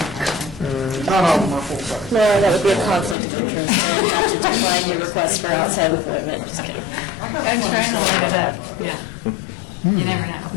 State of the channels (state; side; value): drops out; right; at 3.2 s